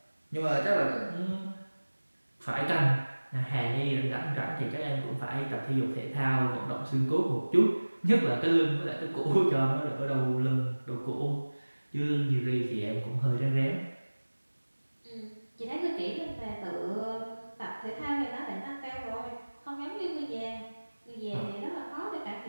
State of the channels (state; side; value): inverted; both; correlation -1.00